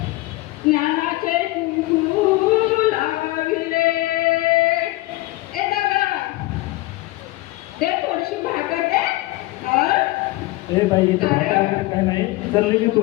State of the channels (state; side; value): quieter; right; 19.4 dB